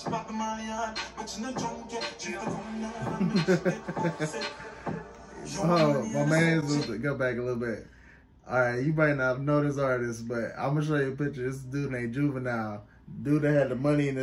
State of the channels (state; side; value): identical; both; correlation 1.00